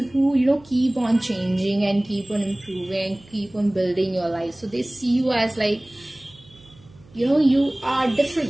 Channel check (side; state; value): right; noise; hum, 26 dB below the sound